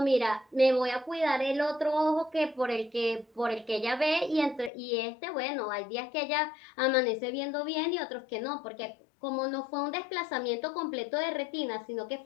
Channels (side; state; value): right; drops out; at 4.7 s